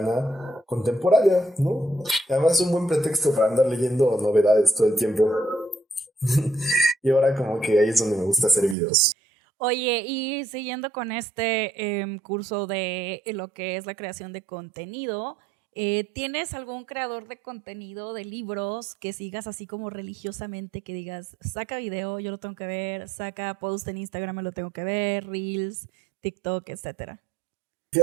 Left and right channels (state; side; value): drops out; left; at 8.8 s